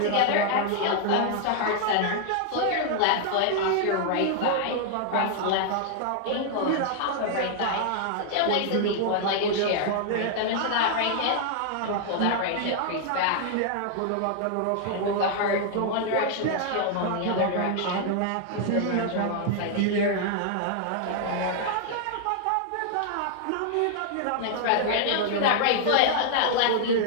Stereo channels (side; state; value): both; different; correlation 0.00